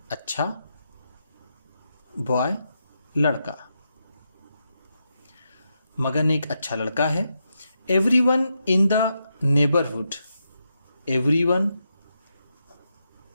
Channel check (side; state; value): both; inverted; correlation -0.84